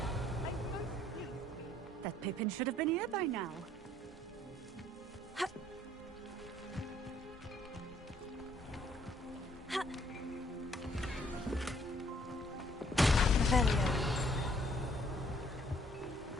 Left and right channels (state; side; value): normal; both; correlation 0.64